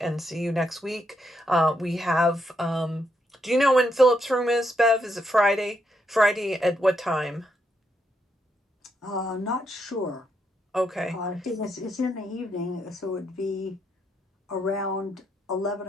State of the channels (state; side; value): normal; both; correlation 0.79